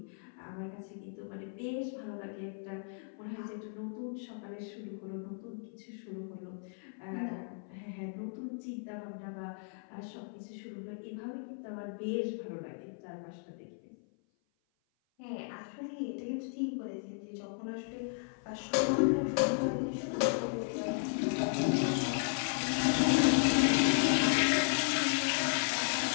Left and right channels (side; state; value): right; silent; 54 dB below the other